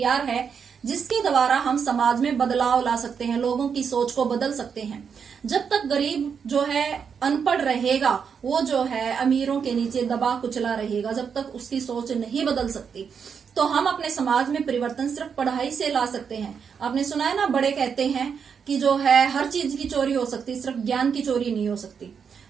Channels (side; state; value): left; quieter; 6.7 dB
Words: है जिसके द्वारा हम समाज में बदलाव ला सकते हैं, लोगों की सोच को बदल सकते हैं। जब तक गरीब जो है अनपढ़ रहेगा, वो जो है अमीरों के नीचे दबा कुचला रहेगा, जब तक उसकी सोच नहीं बदल सकती, तो हम अपने समाज में परिवर्तन सिर्फ पढ़ाई से ला सकते हैं। आपने सुना है ना, बड़े कहते हैं कि जो है हर चीज की चोरी हो सकती, सिर्फ ज्ञान की चोरी नहीं हो सकती।